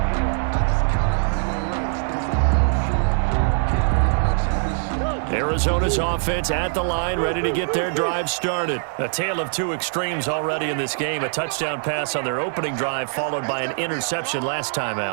Arizona's offense at the line, ready to get their drive started. A tale of two extremes already in this game. A touchdown pass on their opening drive, followed by an interception last time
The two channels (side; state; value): left; silent; digital silence